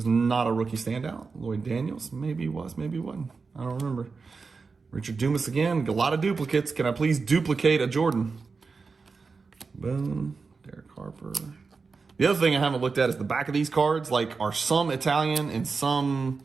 not a rookie standout. Lloyd Daniels, maybe he was, maybe he wasn't. I don't remember. Richard Dumas again. A lot of duplicates. Can I please duplicate a Jordan? Boom. Derek Harper. The other thing I haven't looked at is the back of these cards. Like, are some Italian and some...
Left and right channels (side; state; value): left; quieter; 4.6 dB